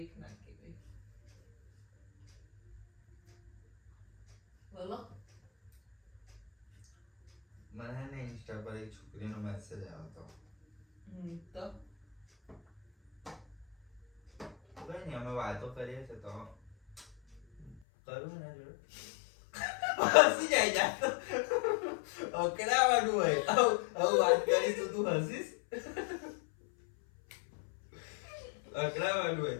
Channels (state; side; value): drops out; right; at 17.8 s